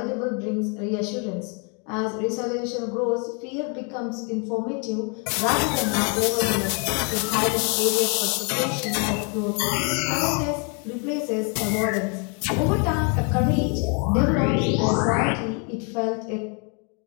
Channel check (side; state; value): right; quieter; 36.4 dB